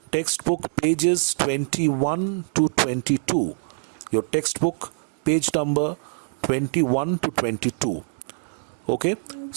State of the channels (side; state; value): left; silent; digital silence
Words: pages 21 to 22. Your textbook page number 21 to 22. Okay,